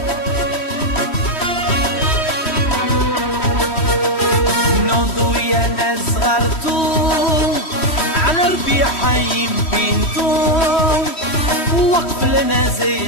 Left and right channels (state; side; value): late; right; 3.1 ms